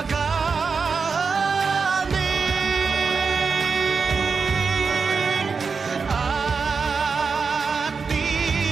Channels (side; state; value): left; quieter; 5.1 dB